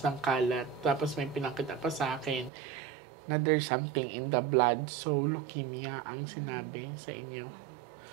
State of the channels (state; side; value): drops out; left; at 2.5 s